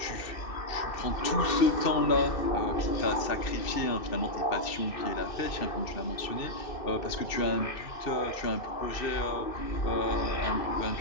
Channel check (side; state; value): right; late; 2.7 ms